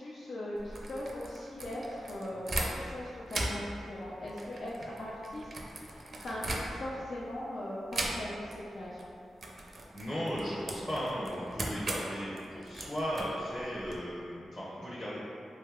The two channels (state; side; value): normal; both; correlation 0.90